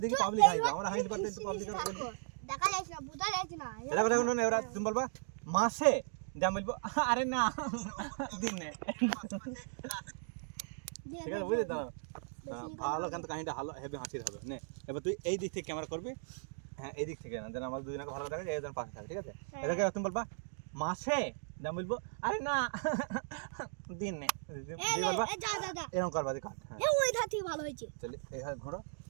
দেখি পাবলিক হাইবে আমরা হাইতে পারতে পাবলিক আর বলি দেখা যাচ্ছে না বুঝা যাচ্ছে না এটা কথা শুনুন এবার তুমি বলবা মাসে যা বলবো আরে না দিনে ঠিক আছে বুঝলি তো ভালো কিন্তু কাহিনীটা ভালো হেভি হাসির হবে নে এবার তুই এই দিক থেকে ক্যামেরা করবি হ্যাঁ এই দিক থেকে না যেন আমাদের দুজনকে ভালো দেখা যায় একজন পাশে থাকে ঠিক আছে এটাকে তুমি বলবা মাসে যা বলবো আরে না দিনে দিয়ে বলবা যা যা যা এরকম করবা দি কাট হ্যাঁ এ ওই ধার থেকে ভালো হয়েছে চলে এই হাত ঘোরো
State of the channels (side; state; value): left; silent; digital silence